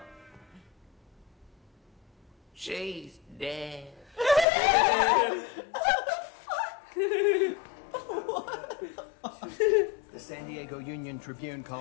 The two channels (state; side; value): drops out; right; at 4.5 s